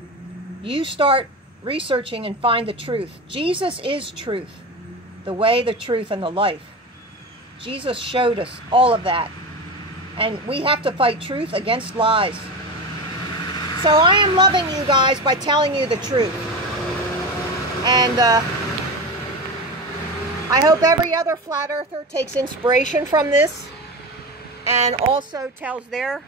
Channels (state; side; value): normal; both; correlation 0.24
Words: you start researching and find the truth. Jesus is truth. The way, the truth, and the life. Jesus showed us all of that. And we have to fight truth against lies. So I am loving you guys by telling you the truth. And I hope every other flat earther takes inspiration from this and also tells their